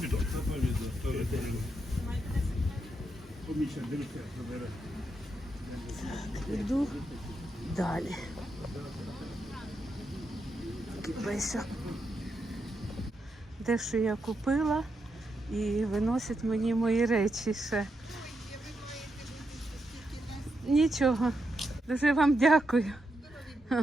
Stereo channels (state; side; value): normal; both; correlation 0.83